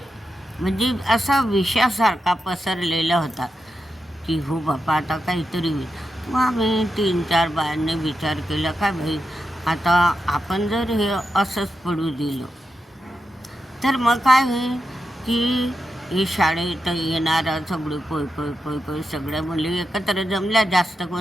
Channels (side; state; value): both; normal; correlation 0.88